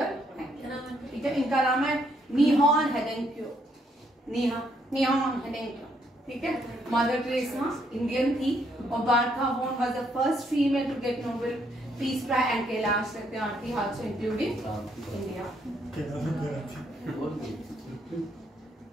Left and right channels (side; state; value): both; normal; correlation 0.72